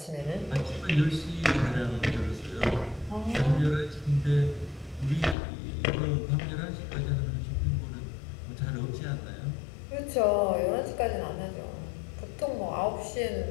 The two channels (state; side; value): drops out; right; at 5.4 s